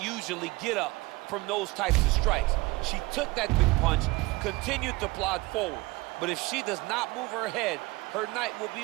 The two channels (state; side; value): quieter; left; 22.7 dB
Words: get up from those types of strikes. She took that big punch, continued to plod forward. But if she does not move her head, her night will